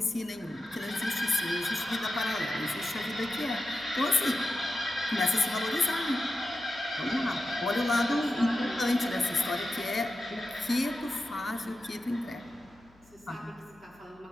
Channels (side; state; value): left; noise; hum, 29 dB below the sound